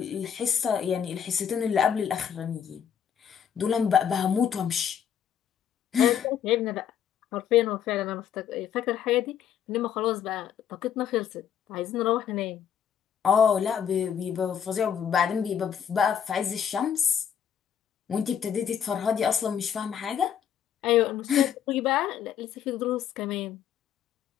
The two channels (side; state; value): right; quieter; 8.5 dB